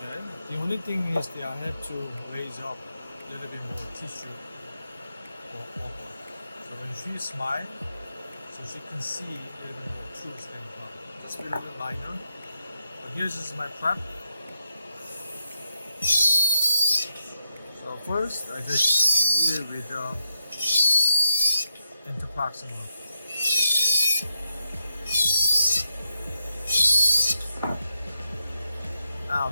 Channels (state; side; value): inverted; both; correlation -0.84